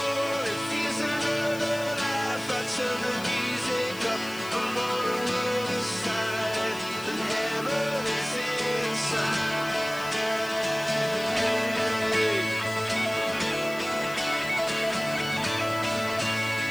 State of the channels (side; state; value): left; noise; hiss, 16 dB below the sound